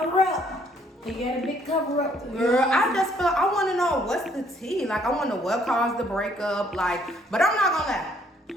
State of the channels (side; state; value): both; normal; correlation 0.65